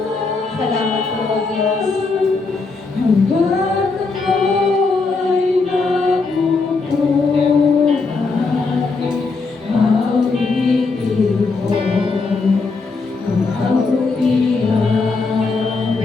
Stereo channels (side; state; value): right; quieter; 4.1 dB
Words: Salamat po, O Diyos.